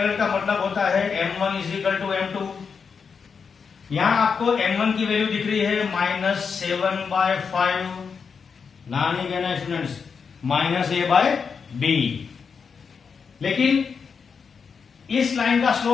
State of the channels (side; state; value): right; quieter; 5.9 dB